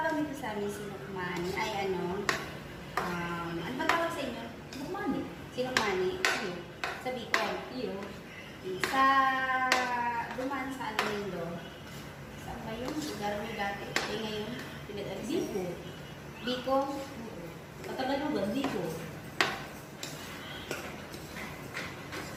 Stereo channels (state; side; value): identical; both; correlation 1.00